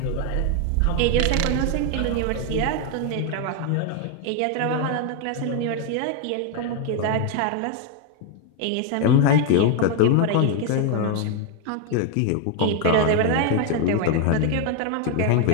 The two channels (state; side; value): different; both; correlation 0.01